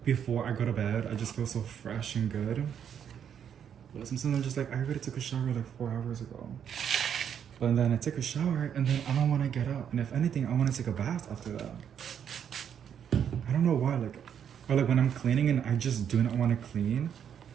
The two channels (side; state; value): left; quieter; 8.5 dB